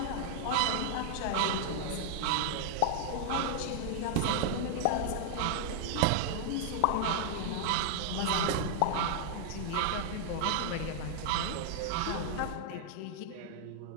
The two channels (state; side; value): different; both; correlation -0.01